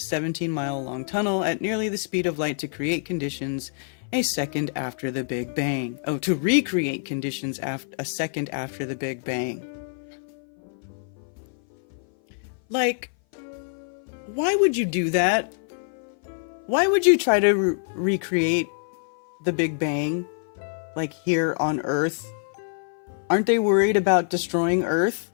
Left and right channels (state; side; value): silent; right; 58 dB below the other